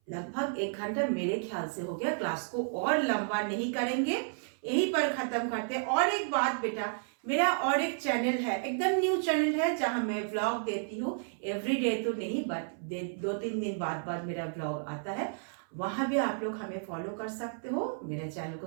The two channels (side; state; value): left; silent; 56 dB below the other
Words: लगभग 1 घंटा मेरे ख्याल से हो गया, क्लास को और लंबा नहीं करेंगे, यहीं पर खत्म करते हैं। और एक बात बेटा, मेरा और एक चैनल है, एकदम न्यू चैनल है, जहां मैं व्लॉग देती हूँ। एवरीडे तो नहीं, बट 2-3 दिन बाद मेरा व्लॉग आता है। वहां भी आप लोग हमें फॉलो कर सकते हो, मेरे चैनल